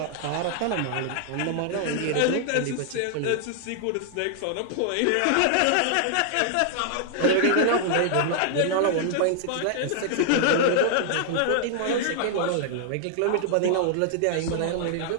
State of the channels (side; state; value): both; different; correlation 0.00